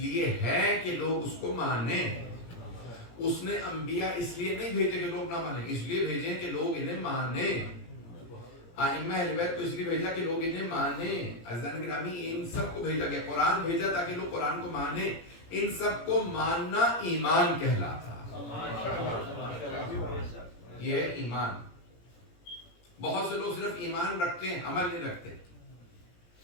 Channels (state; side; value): late; right; 17 ms